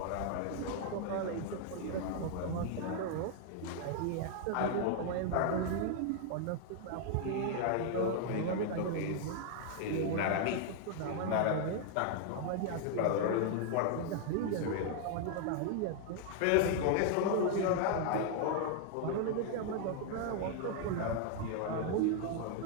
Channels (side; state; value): both; different; correlation 0.00